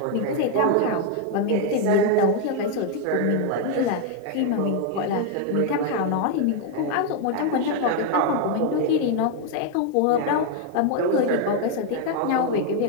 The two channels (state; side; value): different; both; correlation 0.01